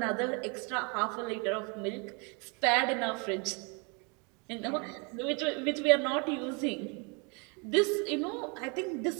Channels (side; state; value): left; quieter; 32.9 dB